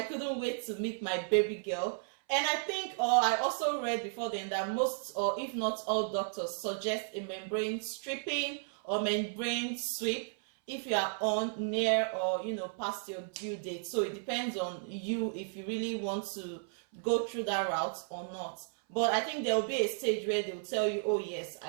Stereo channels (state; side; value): silent; left; 55 dB below the other